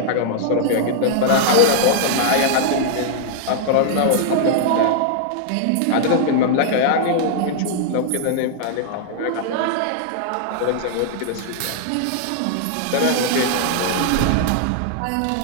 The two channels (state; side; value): different; both; correlation -0.01